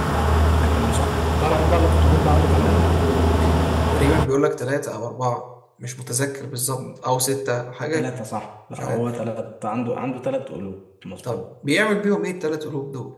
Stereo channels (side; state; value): both; identical; correlation 1.00